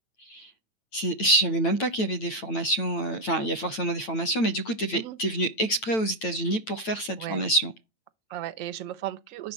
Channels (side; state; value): right; late; 9.0 ms